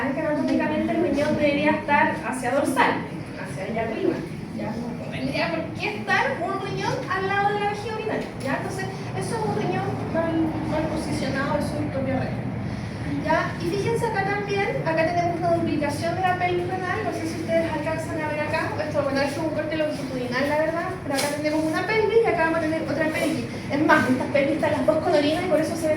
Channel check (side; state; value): both; identical; correlation 1.00